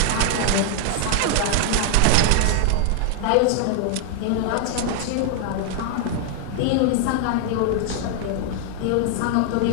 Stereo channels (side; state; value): both; different; correlation 0.00